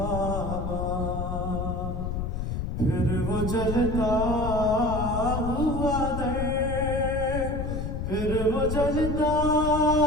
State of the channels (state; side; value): noise; left; rumble, 3 dB below the sound